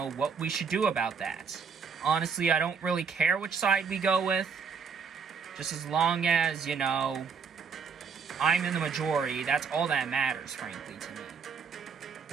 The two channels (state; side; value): quieter; left; 5.8 dB